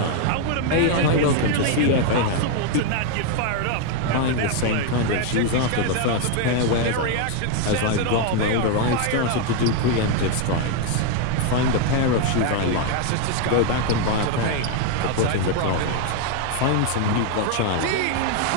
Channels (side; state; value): both; different; correlation 0.00